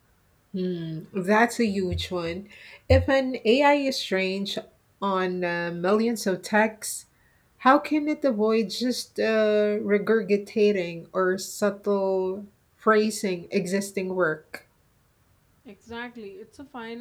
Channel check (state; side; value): identical; both; correlation 1.00